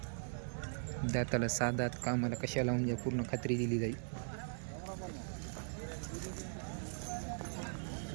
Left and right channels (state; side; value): silent; left; 51 dB below the other